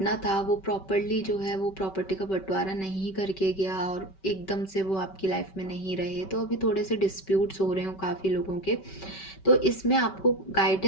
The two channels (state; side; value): late; right; 5.2 ms